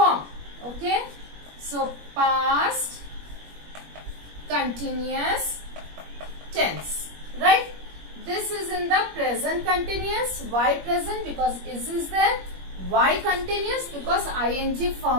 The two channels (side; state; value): left; late; 21 ms